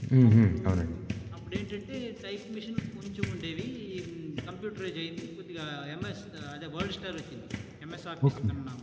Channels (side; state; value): both; identical; correlation 1.00